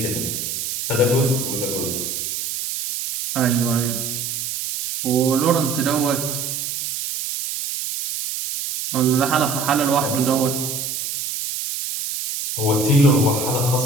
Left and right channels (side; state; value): right; noise; hiss, 4 dB below the sound